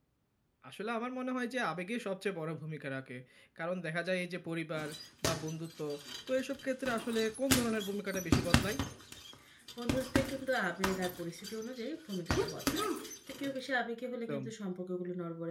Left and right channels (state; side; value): identical; both; correlation 1.00